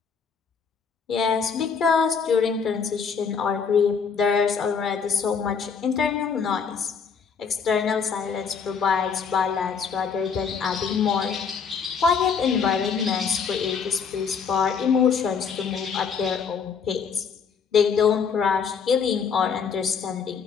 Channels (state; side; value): quieter; right; 6.1 dB